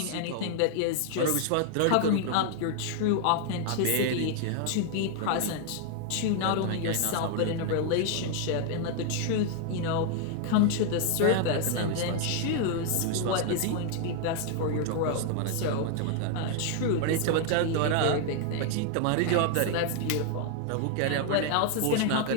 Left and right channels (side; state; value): both; different; correlation 0.00